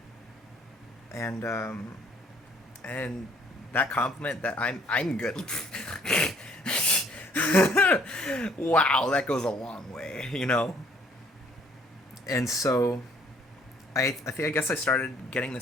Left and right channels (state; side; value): normal; both; correlation 0.61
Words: and that compliment that I'm good. Wow, that goes a long way, you know? And so I guess I started getting